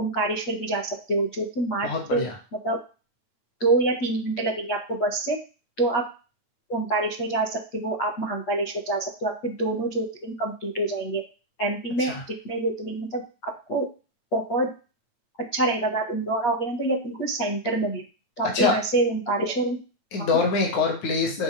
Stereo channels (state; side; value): late; right; 9.4 ms